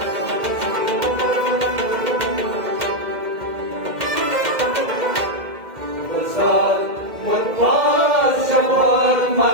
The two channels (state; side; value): late; left; 2.1 ms